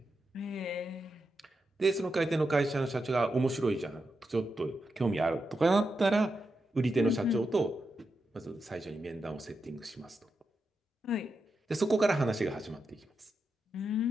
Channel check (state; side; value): normal; both; correlation 0.87